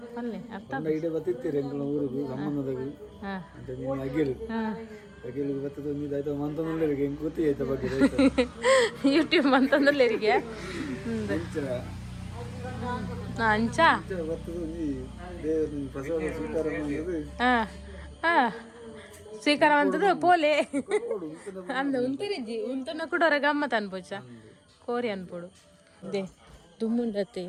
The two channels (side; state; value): both; identical; correlation 1.00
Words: ಪಲ್ಲೆ ಅರ್ಥ ಇಡೆ ಬತ್ತಿತ್ತೀರಿ ಎಂಕಲ್ನ ಊರಿಗೆ ಸಂಬಂಧದಾಗ ಹಾಂ ಅಂತ ನೀನು ಅಗೇಲು ಹಾಂ ಅಗೇಲಿಗೆ ಬತ್ತದ ಒಂದು ಆಯ್ತು ಮಂತಂದ್ರೆ ಹೆಂಗೆ ಗೊತ್ತಿ ಆಯ್ತಾ ಬಗ್ಗೆ ಯೂಟ್ಯೂಬ್ ಅಂತಂದ್ರಲ್ಲಿರಿಗೆ ಅಂಚ ಬತ್ತದ ಒಂದು ದೇವರ ಪ್ರಸಾದ ಸ್ವೀಕಾರ ಮಾಡೋದು ಹಾಂ ಹಾಂ ಸ್ವೀಕಾರವಂತದ್ದು ಪೋಲೆ ಅಂದ ಉಂಟರಿಜ್ಜಿ ಉಂಟನ ಕೂಡ ಹೊರ ಗಮ್ಮತ್ ಅನ್ಪೋಚ ಕೋರಿ ಅನ್ಪೋಡು ದೇ ದುಮ್ಮುಂಡತ್ತೆ